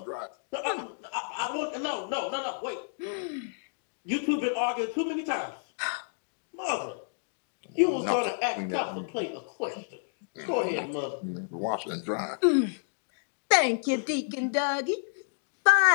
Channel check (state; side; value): silent; right; digital silence